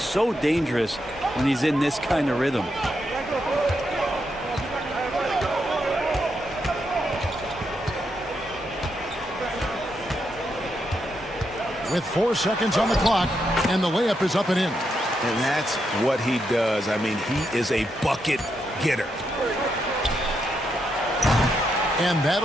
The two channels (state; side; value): normal; both; correlation 0.82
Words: dangerous when he's in this kind of rhythm. with 4 seconds on the clock, and the layup is up and in. And that's what he does. I mean, he is a bucket getter. And